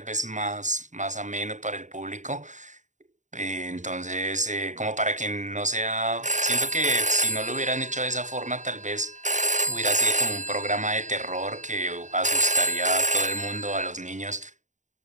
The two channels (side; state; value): left; late; 0.36 ms